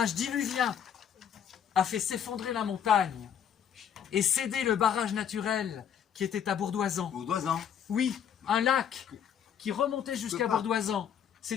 diluvien a fait s'effondrer la montagne et céder le barrage naturel qui était à Bourdoisan. Bourdoisan. Oui, un lac qui remontait jusqu'à pas. Bourdoisan.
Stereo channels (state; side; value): quieter; right; 8.7 dB